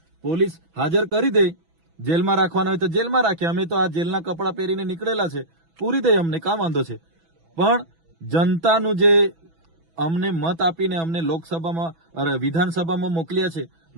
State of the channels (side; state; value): left; late; 6.1 ms